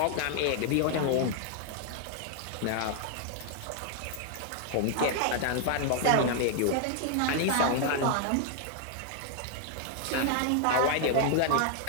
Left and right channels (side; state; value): both; different; correlation 0.00